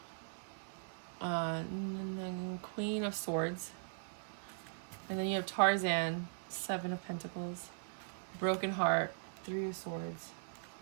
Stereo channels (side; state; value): left; silent; digital silence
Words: And then Queen of Swords. And then you have Tarzan, 7 of Pentacles. Broken Heart, 3 of Swords.